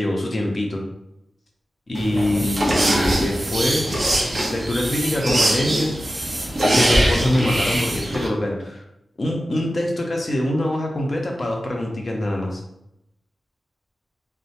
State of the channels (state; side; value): normal; both; correlation 0.93